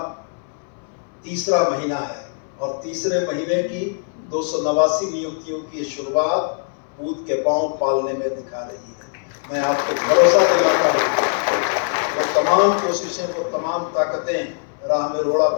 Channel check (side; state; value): right; silent; 63 dB below the other